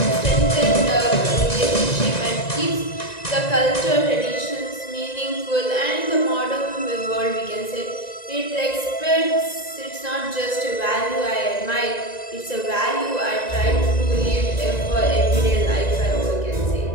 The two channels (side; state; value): right; late; 1.9 ms